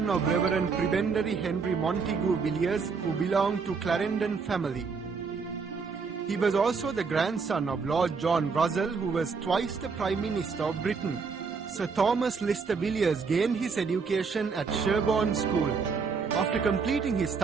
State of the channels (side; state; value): left; quieter; 5.1 dB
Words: of Reverend Prebendary Henry Montegu Villiers, who belonged to Clarendon family. He was also the grandson of Lord John Russell, who was twice the Prime Minister of Britain. Sir Thomas Lister Villiers gained his education at Sherborne School. After completing his